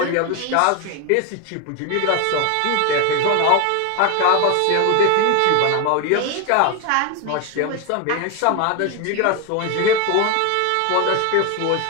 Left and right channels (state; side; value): different; both; correlation 0.01